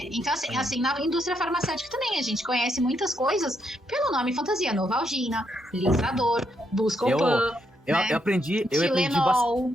Então, assim, na indústria farmacêutica também, a gente conhece muitas coisas pelo nome fantasia. Novalgina, Lisador, Buscopan. Eu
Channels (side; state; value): both; normal; correlation 0.77